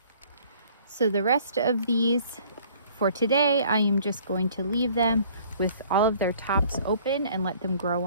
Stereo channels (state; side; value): inverted; both; correlation -0.56